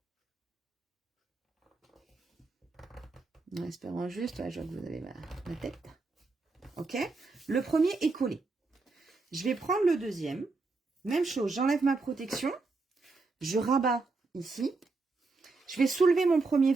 En espérant juste, ouais, je vois que vous avez ma tête. Ok, le premier est collé. Je vais prendre le deuxième. Même chose, j'enlève ma protection. Je rabats ici. Je vais soulever mon premier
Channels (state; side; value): quieter; left; 3.8 dB